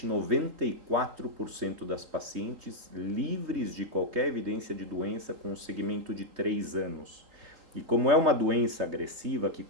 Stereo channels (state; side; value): late; left; 3.8 ms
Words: 94% das pacientes livres de qualquer evidência de doença com um segmento de 3 anos. E como é uma doença agressiva que